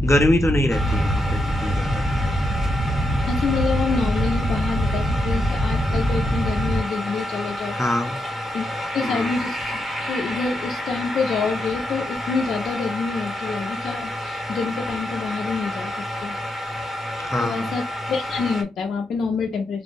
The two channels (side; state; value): both; normal; correlation 0.83